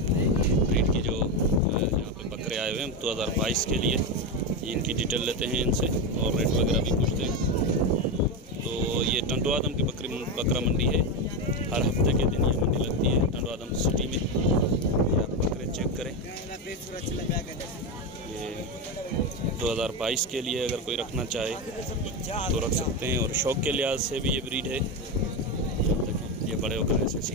की जो यहाँ पे बकरे आए हुए हैं 2022 के लिए, इनकी डिटेल लेते हैं इनसे और रेट वगैरह भी पूछते हैं। तो ये टंडो आदम की बकरा मंडी है। हर हफ्ते के दिन ये मंडी लगती है टंडो आदम सिटी में। ये आप बकरे चेक करें। ये 2022 के लिए अगर कोई रखना चाहे तो रख सकते हैं। और शौक के लिहाज से भी ये ब्रीड है। ये बड़े होकर ऐसे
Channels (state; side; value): normal; both; correlation 0.13